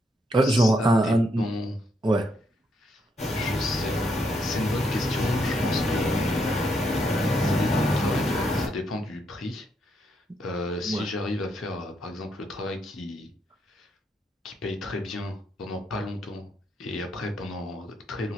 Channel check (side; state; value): both; normal; correlation 0.77